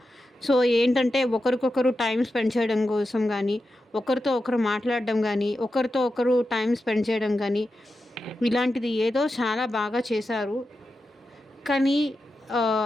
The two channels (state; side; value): normal; both; correlation 0.90